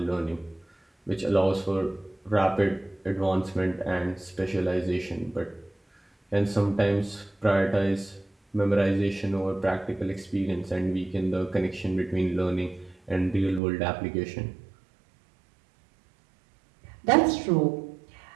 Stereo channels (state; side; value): drops out; left; at 13.6 s